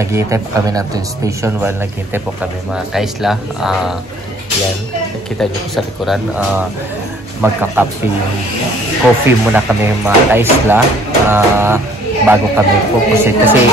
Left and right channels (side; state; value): both; normal; correlation 0.58